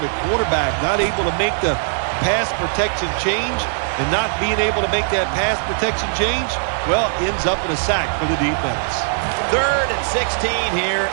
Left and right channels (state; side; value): silent; left; 66 dB below the other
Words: the quarterback not able to make the pass protection change, and not being able to make that pass protection change, well, ends up in a sack for the defense. Third and 16 here